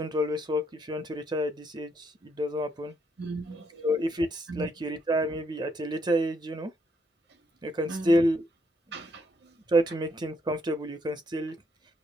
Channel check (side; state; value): both; normal; correlation 0.73